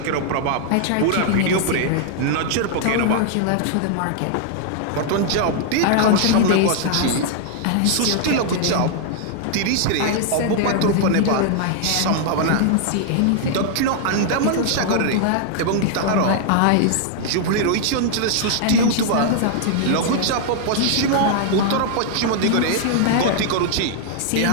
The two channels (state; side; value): different; both; correlation 0.00